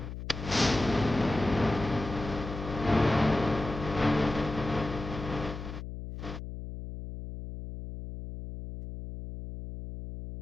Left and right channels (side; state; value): left; noise; hum, 9 dB below the sound